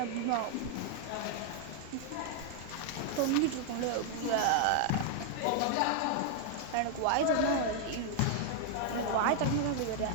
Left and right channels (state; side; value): different; both; correlation 0.00